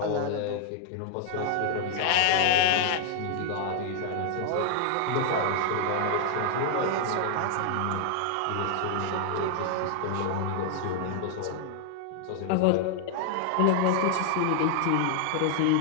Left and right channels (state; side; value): different; both; correlation 0.00